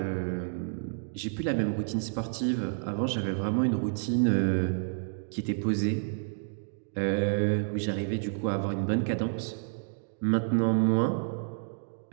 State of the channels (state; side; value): silent; left; digital silence